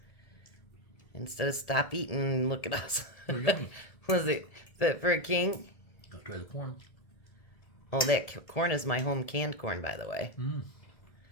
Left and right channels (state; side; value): late; right; 1.8 ms